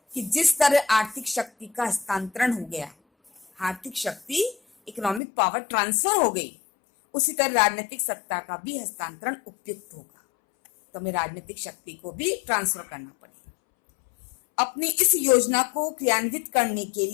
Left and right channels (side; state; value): right; drops out; at 5.2 s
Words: कि जिस तरह आर्थिक शक्ति का हस्तांतरण हो गया, आर्थिक शक्ति इकोनॉमिक पावर ट्रांसफर हो गई, उसी तरह राजनीतिक सत्ता का भी हस्तांतरण उपयुक्त होगा। तो हमें राजनीतिक शक्ति को भी ट्रांसफर करना पड़ेगा। अपनी इस योजना को क्रियान्वित करने के